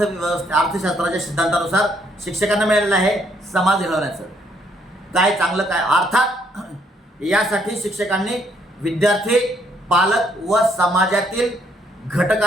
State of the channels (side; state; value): both; normal; correlation 0.70